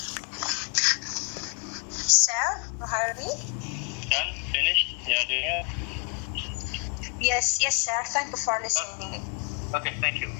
Sir, you heard me? Done? Finished? Yeah, do you? Yes, sir. Thank you for listening. Okay, thank you.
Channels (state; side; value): quieter; right; 36.5 dB